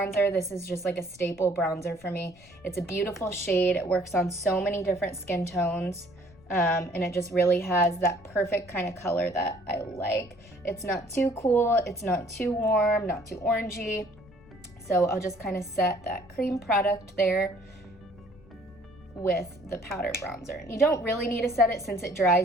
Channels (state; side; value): noise; left; rumble, 24 dB below the sound